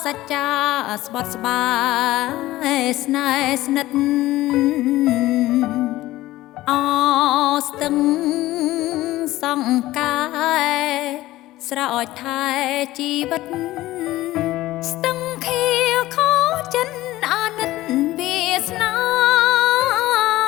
សច្ចាស្បត់ស្បាយស្នេហ៍ស្និទ្ធអស្ទឹងសង្កាយស្រោចថែជីវិតស្ទឹងខៀវខោចិនអាណិតវាសនា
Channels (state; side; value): quieter; right; 16.7 dB